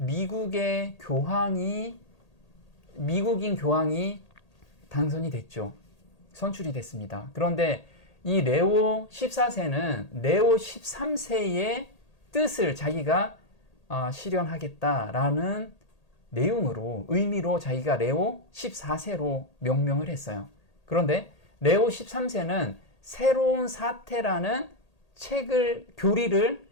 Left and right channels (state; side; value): late; right; 1.8 ms